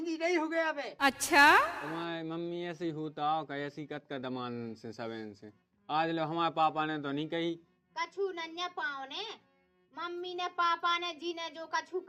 नहीं हो गया बे। तुम्हारी मम्मी ऐसे ही होता हो, ऐसी कत का दमान से सबेन से। आज लो हमारे पापा ने तो नहीं कही। कछु नन्या पाओ ने, मम्मी ने पापा ने जी ने जो कछु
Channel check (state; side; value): identical; both; correlation 1.00